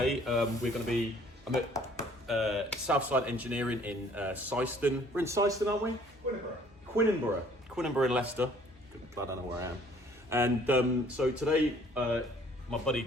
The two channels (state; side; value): normal; both; correlation 0.57